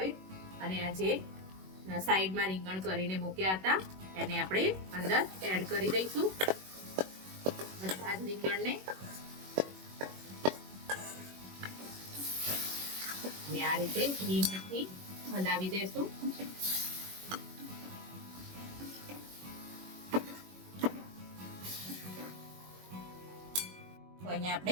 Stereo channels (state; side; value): late; left; 21 ms